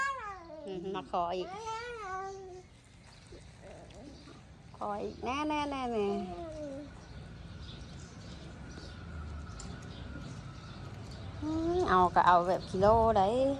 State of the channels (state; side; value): identical; both; correlation 1.00